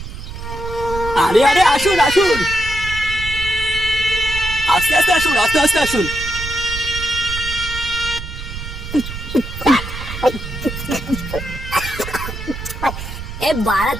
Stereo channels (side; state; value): right; noise; rumble, 9 dB below the sound